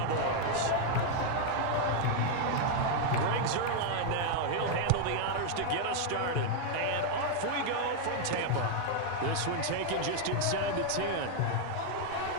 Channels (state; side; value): different; both; correlation 0.00